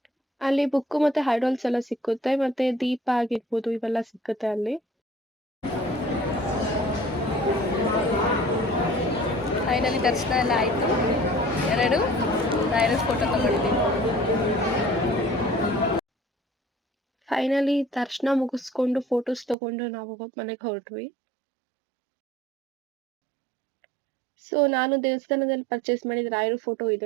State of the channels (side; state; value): left; drops out; at 19.6 s